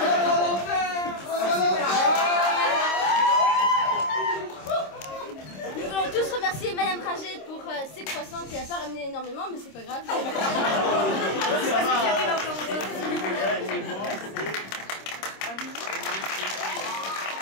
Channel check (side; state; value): right; late; 26 ms